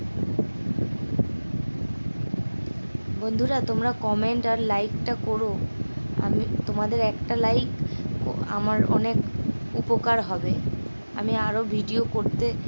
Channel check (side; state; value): both; inverted; correlation -1.00